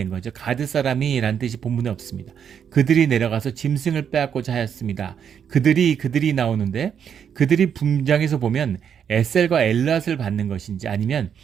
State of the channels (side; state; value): left; quieter; 8.0 dB